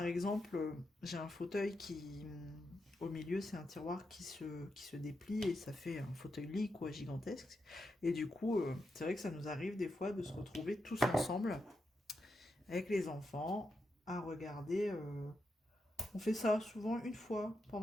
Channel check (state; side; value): normal; both; correlation 0.85